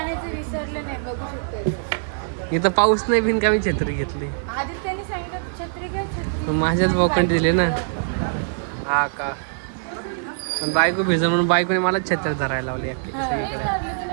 विसरले नाही, बघू शकतो. इथं पाऊस नाही बिन का मी छत्री घेतली. आधी त्यांनी सांगितलं छत्री घ्या, छत्री. माझ्याच बोकंड दिले ना. हा का, पण बायको भिजल म्हणून बायकोने मला छत्री धरायला लावली अख्खी सगळीकडे. लागली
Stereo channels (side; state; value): left; silent; digital silence